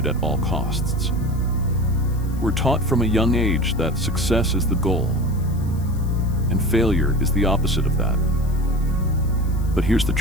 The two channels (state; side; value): noise; left; hiss, 23 dB below the sound